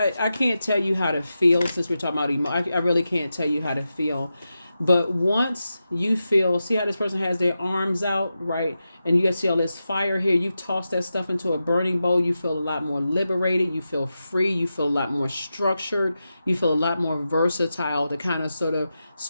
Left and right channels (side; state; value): both; inverted; correlation -0.90